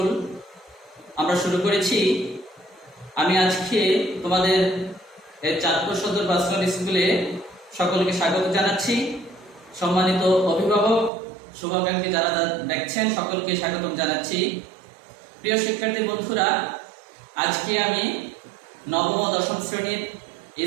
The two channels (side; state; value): left; drops out; at 11.1 s